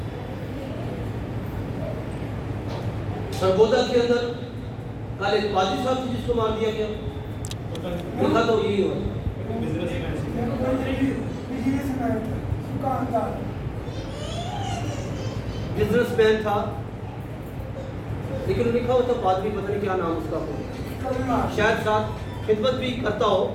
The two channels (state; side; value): identical; both; correlation 1.00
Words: سرگودا کے اندر کل ایک پادری صاحب تھے جس کو مار دیا گیا. دیکھا تو یہی ہوا. بزنس مین تھا لیکن لکھا ہوتا پادری, پتہ نہیں کیا نام اس کا ہو, شاید ساتھ خدمت بھی کرتا ہو.